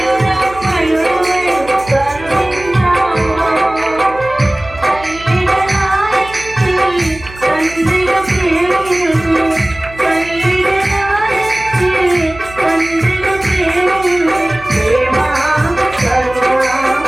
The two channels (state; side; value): noise; right; hum, 17 dB below the sound